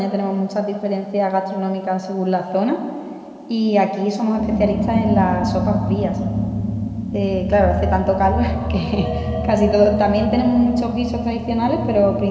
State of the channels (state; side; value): identical; both; correlation 1.00